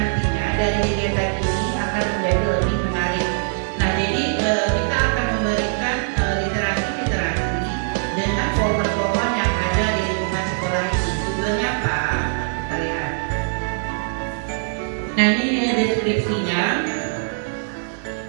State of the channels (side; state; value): left; silent; digital silence